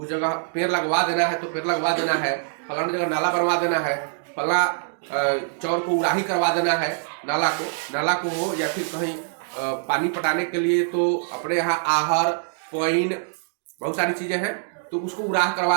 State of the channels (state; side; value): silent; left; digital silence